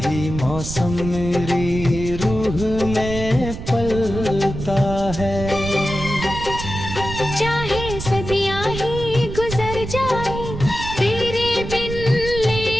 ही मौसम मेरी रूह में पलता है। चाहे सदियां ही गुजर जाए तेरे बिन,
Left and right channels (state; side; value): noise; right; rumble, 8 dB below the sound